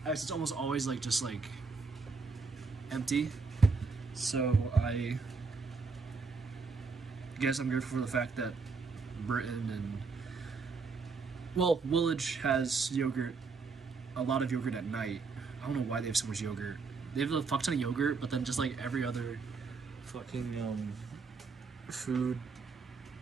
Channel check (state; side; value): quieter; left; 4.6 dB